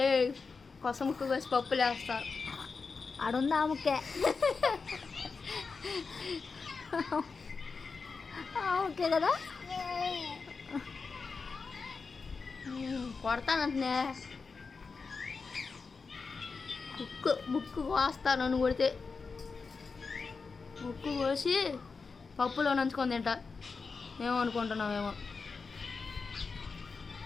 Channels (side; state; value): right; quieter; 4.7 dB